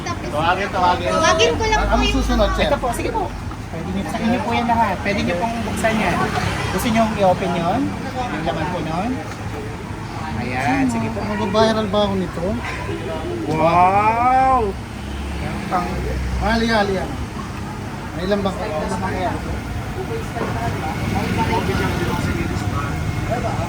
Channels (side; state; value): both; identical; correlation 1.00